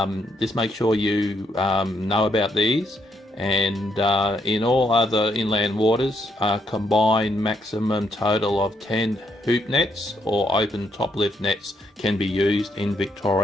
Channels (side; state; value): both; normal; correlation 0.76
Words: just make sure you know about these. And in all other inland waters, combined maximum total of 10 hoop nets or open top lift nets can be used in